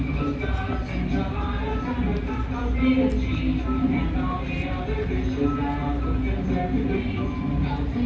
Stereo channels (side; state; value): both; identical; correlation 1.00